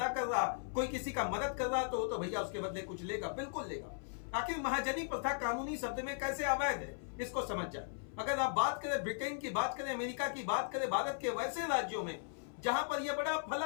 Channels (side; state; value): right; silent; 53 dB below the other